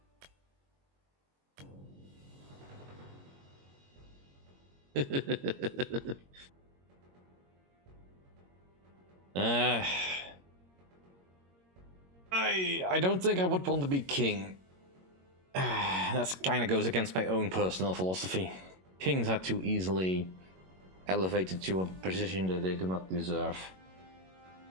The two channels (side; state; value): left; late; 22 ms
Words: I don't think I would want to be king. That kind of goes against my own personal philosophy. Kings are too easily elevated to a position that they do not deserve.